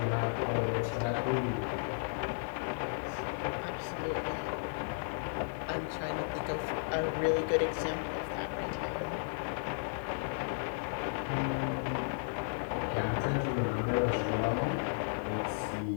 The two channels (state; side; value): silent; right; 55 dB below the other